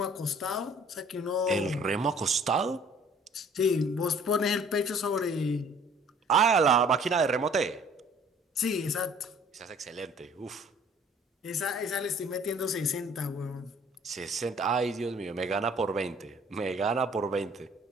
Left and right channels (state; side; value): normal; both; correlation 0.54